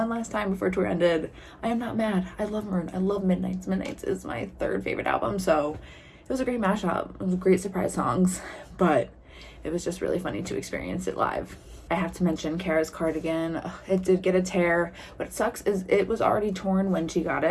before tour ended. I am not mad. I love Maroon. I love Midnights. Midnights is my third favorite album, so it was a great mashup. It was great surprise songs, but it was just really funny to experience it live. I have to mention Cara's cardigan. Ugh, it did get a tear. What sucks is it was already torn when she got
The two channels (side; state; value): both; identical; correlation 1.00